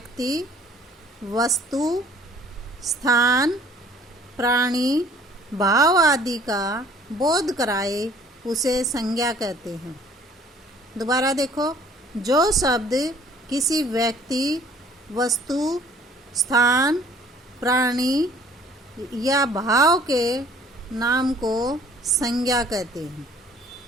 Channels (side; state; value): both; normal; correlation 0.55